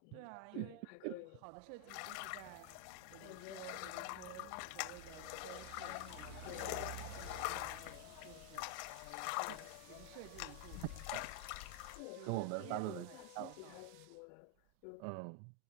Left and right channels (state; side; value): different; both; correlation 0.00